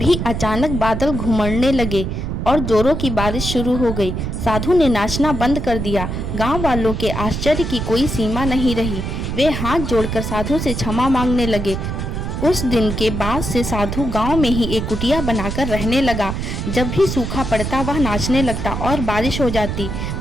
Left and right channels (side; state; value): right; noise; rumble, 3 dB below the sound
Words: अचानक बादल घुमड़ने लगे और जोरों की बारिश शुरू हो गई। साधु ने नाचना बंद कर दिया। गांव वालों के आश्चर्य की कोई सीमा नहीं रही। वे हाथ जोड़कर साधु से क्षमा मांगने लगे। उस दिन के बाद से साधु गांव में ही एक कुटिया बनाकर रहने लगा। जब भी सूखा पड़ता वह नाचने लगता और बारिश हो जाती।